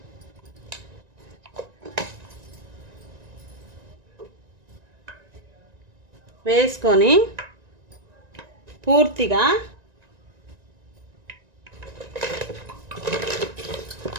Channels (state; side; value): late; left; 1.9 ms